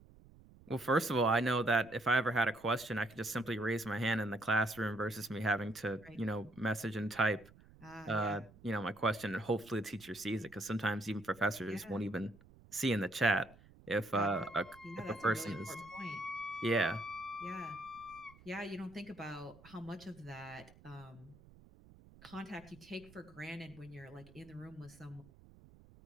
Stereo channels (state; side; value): noise; right; rumble, 23 dB below the sound